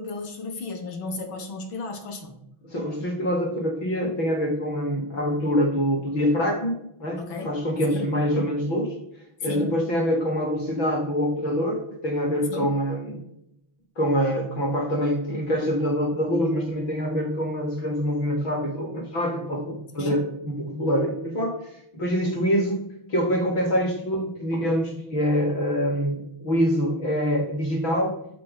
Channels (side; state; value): right; late; 6.1 ms